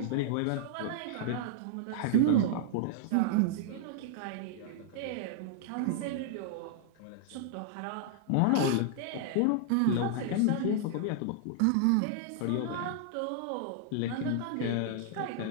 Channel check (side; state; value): both; different; correlation -0.01